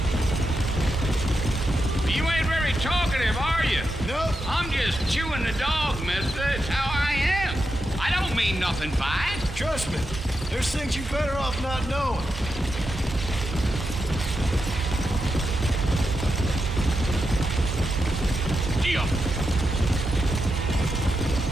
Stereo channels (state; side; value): normal; both; correlation 0.87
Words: You ain't very talkative, are you? Nope. I'm just chewing the dog, mister. It's how I am. I don't mean nothing by it. Trust me. There's things you better off not knowing. Gee,